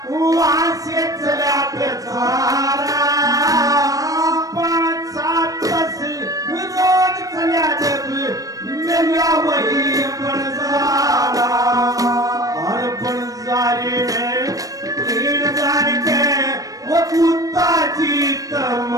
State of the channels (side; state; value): left; late; 0.17 ms